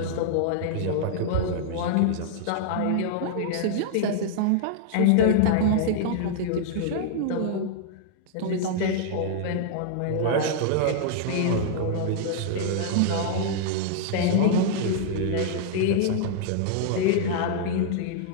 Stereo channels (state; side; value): different; both; correlation -0.01